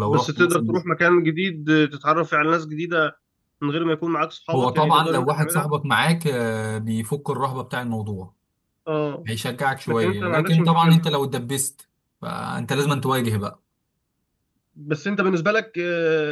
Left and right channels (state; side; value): identical; both; correlation 1.00